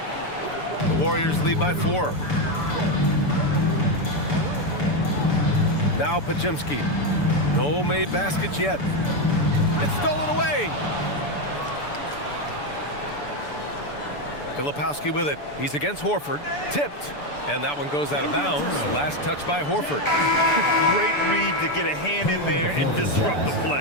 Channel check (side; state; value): right; late; 6.9 ms